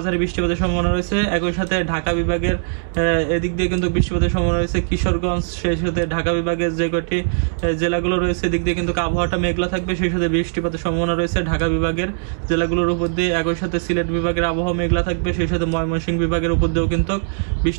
বৃষ্টিপাতের সম্ভাবনা রয়েছে। একই সাথে ঢাকা বিভাগের এদিক দিয়ে কিন্তু বৃষ্টিপাতের সম্ভাবনা রয়েছে। কিশোরগঞ্জ, সেই সাথে ঢাকা বিভাগের যে কয়টি জেলাগুলো রয়েছে এদিক দিয়ে কিন্তু আবহাওয়াটা মেঘলা থাকবে, সেই সাথে বৃষ্টিপাতের সম্ভাবনা রয়েছে ঢাকা বিভাগের জেলাগুলোর উপর দিয়ে। একই সাথে সিলেট বিভাগের আবহাওয়া মেঘলা থাকবে, সেই সাথে ময়মনসিংহ বিভাগের উপর দিয়েও কিন্তু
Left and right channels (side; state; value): left; silent; 66 dB below the other